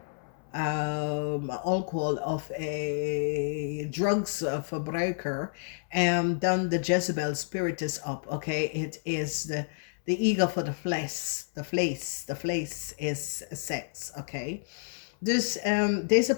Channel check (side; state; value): right; silent; 58 dB below the other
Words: drugs verbruiker, and dan de Jezebel spirit is up. Okay, it is the ego for the flesh. The flesh is sex. Okay, dus deze